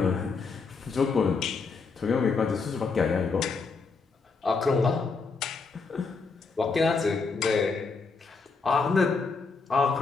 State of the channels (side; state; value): right; quieter; 4.6 dB